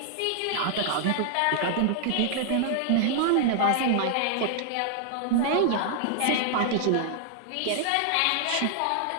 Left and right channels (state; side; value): different; both; correlation -0.01